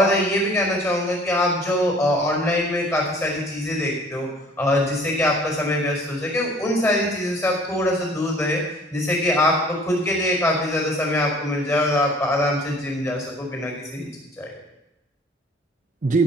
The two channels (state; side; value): normal; both; correlation 0.52